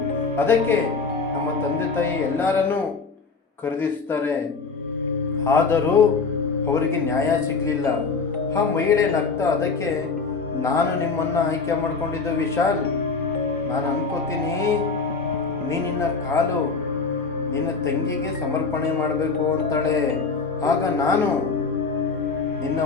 ಅದಕ್ಕೆ ನಮ್ಮ ತಂದೆ ತಾಯಿ ಎಲ್ಲರನ್ನೂ ಖರೀದಿಸ್ತಾರೆ. ಆದರೂ ಅವರಿಗೆ ನ್ಯಾಯ ಸಿಗಲಿಲ್ಲ. ಆ ಮಹಿಳೆ ನಗ್ತಾ, ಅದಕ್ಕೆ ನಾನು ನಿಮ್ಮನ್ನು ಆಯ್ಕೆ ಮಾಡ್ಕೊಂಡಿದ್ದು ವಿಶಾಲ್. ನಾನು ಅನ್ಕೋತೀನಿ ನಿನ್ನ ಕಾಲು ನಿನ್ನ ತಂಗಿಗೆ ಸಮರ್ಪಣೆ ಮಾಡಬೇಕು ಅಂತಾಳೆ. ಆಗ ನಾನು ನಿನ್ನ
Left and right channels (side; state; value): right; quieter; 4.7 dB